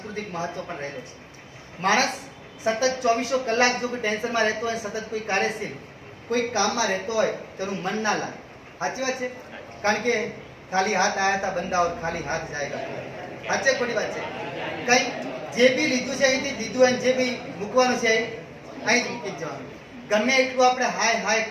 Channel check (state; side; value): identical; both; correlation 1.00